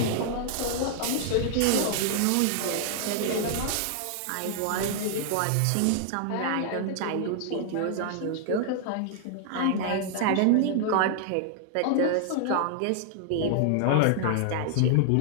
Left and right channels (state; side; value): different; both; correlation -0.01